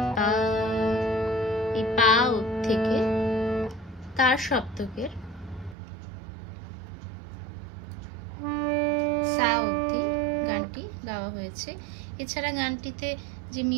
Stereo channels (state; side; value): drops out; left; at 5.8 s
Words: পা, এই পা থেকে তার সপ্তকের সা অবধি গানটি গাওয়া হয়েছে। এছাড়া গানটিতে যে